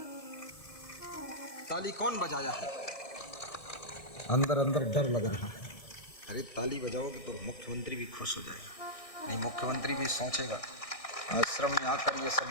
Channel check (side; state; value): right; late; 1.6 ms